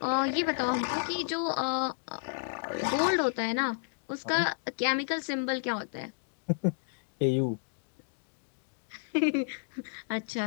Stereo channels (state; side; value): silent; right; digital silence